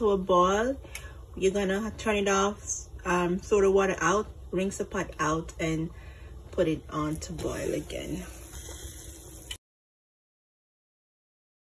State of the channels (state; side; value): identical; both; correlation 1.00